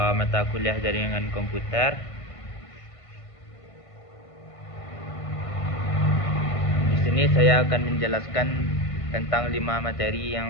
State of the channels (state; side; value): late; right; 1.5 ms